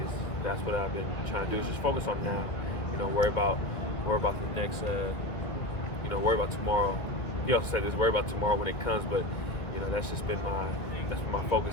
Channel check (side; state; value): right; late; 2.0 ms